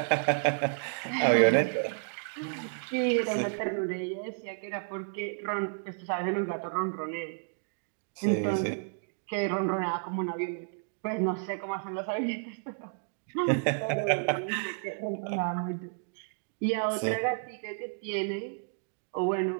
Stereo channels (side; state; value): left; silent; digital silence